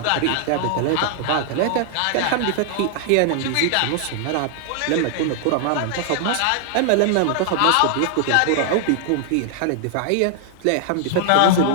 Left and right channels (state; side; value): different; both; correlation 0.00